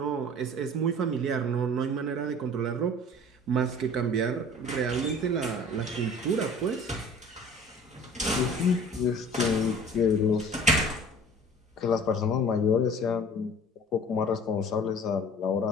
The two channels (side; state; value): both; normal; correlation 0.45